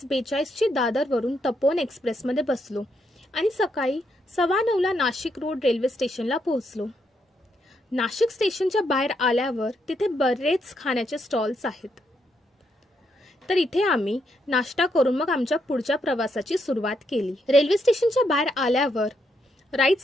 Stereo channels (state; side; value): normal; both; correlation 0.78